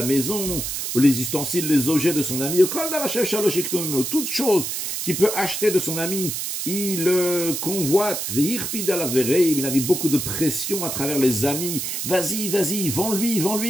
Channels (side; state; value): right; noise; hiss, 3 dB below the sound